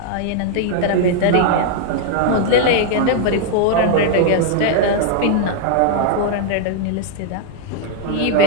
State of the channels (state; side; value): different; both; correlation 0.00